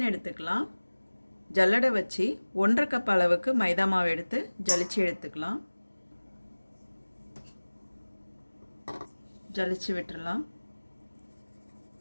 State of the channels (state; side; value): inverted; both; correlation -1.00